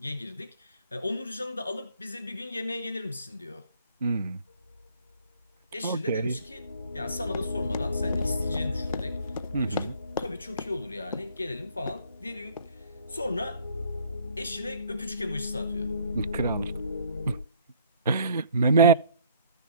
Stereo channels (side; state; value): both; inverted; correlation -0.59